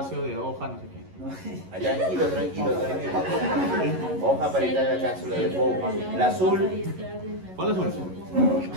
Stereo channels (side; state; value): left; late; 11 ms